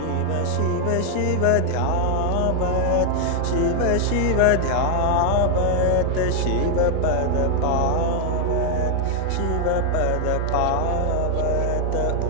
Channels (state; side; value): different; both; correlation 0.00